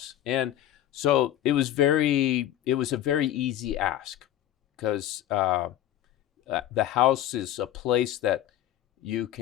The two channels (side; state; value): right; quieter; 12.2 dB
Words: And so it was a very easy ask, because the house is a place that you